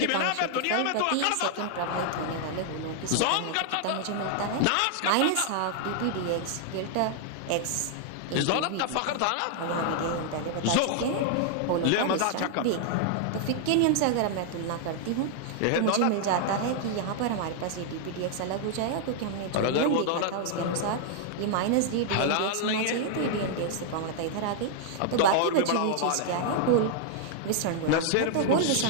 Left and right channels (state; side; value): different; both; correlation 0.00